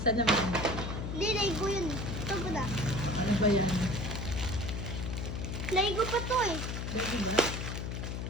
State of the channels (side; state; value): left; noise; hum, 4 dB below the sound